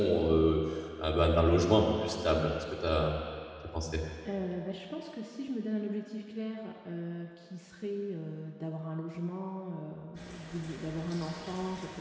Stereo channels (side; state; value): both; identical; correlation 1.00